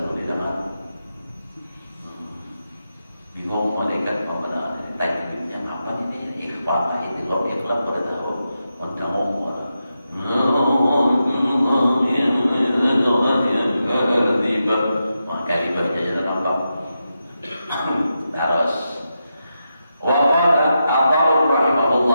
di dalam bingung malaikat mana tajwidnya apa ini ikhfa itu kalau ikhlas pada tahu tamu maka dibaca jalan apa terus waqala Abu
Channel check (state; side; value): inverted; both; correlation -0.88